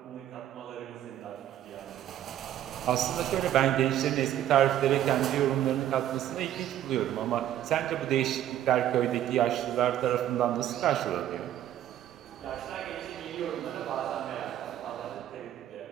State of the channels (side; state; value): left; quieter; 11.8 dB